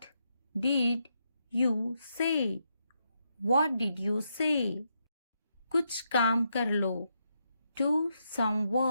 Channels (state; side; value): inverted; both; correlation -0.81